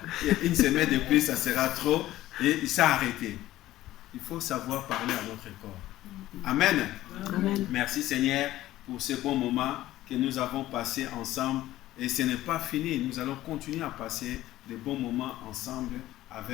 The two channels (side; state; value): right; quieter; 15.2 dB